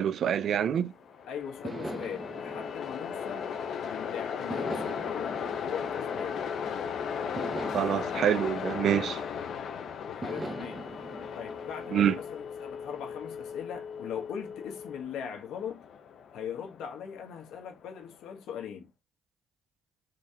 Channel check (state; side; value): normal; both; correlation 0.61